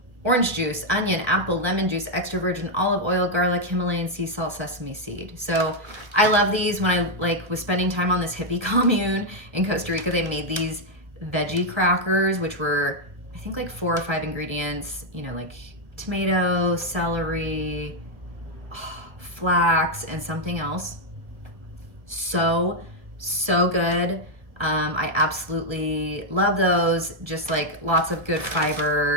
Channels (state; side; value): late; left; 1.3 ms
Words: Orange juice, onion, apple, lemon juice, extra virgin olive oil, garlic, Himalayan sea salt, sesame seed. So I love these. When I was spending time on this hippie commune in Costa Rica, they made these veggie crackers, which were, I think, like 4 or 5 ingredients, like tomato, celery, flax, and something else. So So good. I absolutely love those. Just like lots of good